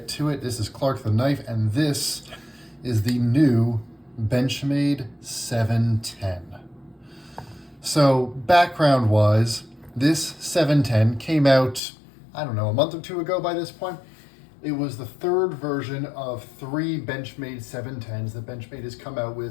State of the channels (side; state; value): right; drops out; at 11.8 s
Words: to it. This is Clark the Knife, and this is the new Benchmade 710. So background-wise, this 710 came out, I don't know, a month or two ago by this point. It was the third version of 3 Benchmade 710s that Benchmade has come out